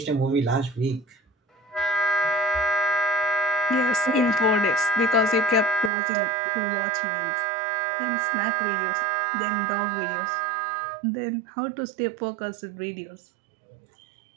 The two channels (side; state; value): left; drops out; at 5.9 s